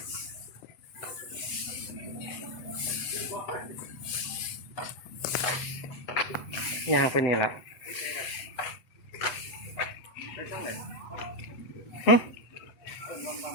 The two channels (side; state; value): right; late; 8.0 ms